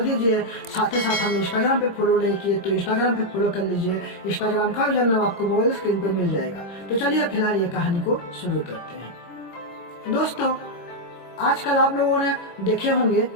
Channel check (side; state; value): right; late; 25 ms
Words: दीजिए। साथ ही साथ हमें इंस्टाग्राम पे फॉलो नहीं किए तो इंस्टाग्राम पे फॉलो कर लीजिए। इंस्टाग्राम का यूजर नाम आपको मोबाइल स्क्रीन पे मिल जाएगा। तो चलिए फिलहाल ये कहानी को शुरू करते हैं। दोस्तों, आजकल आप लोगों ने देखे होंगे